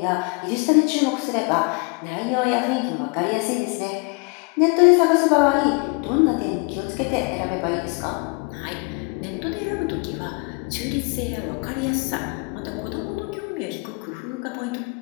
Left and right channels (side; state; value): right; quieter; 31.3 dB